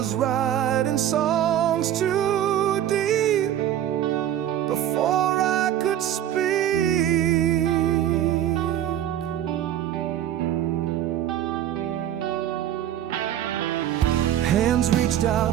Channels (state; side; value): quieter; left; 11.3 dB